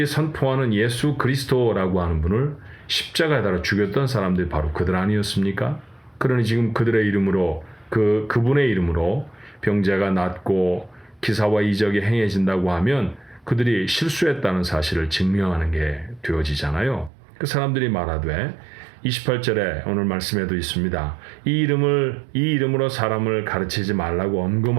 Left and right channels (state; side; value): drops out; left; at 17.1 s